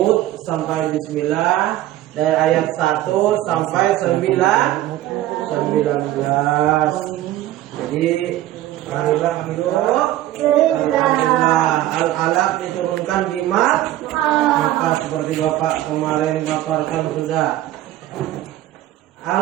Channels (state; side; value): quieter; left; 14.3 dB